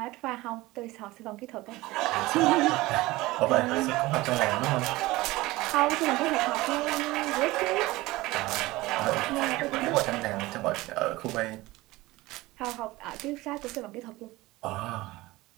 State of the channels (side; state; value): left; quieter; 19.6 dB